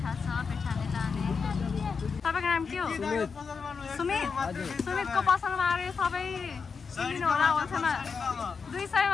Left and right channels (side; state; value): right; quieter; 5.4 dB